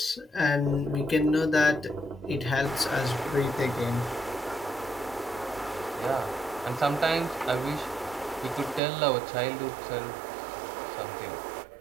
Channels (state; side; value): drops out; left; at 8.8 s